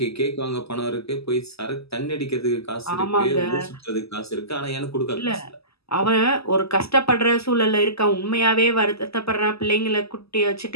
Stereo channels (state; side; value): late; right; 0.78 ms